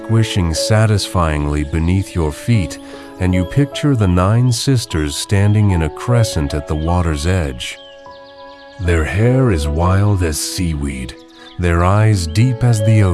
satisfyingly beneath your feet, and you picture the 9 sisters standing in a crescent at the water's edge. Their hair is wild as seaweed, their eyes deep as the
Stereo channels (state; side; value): identical; both; correlation 1.00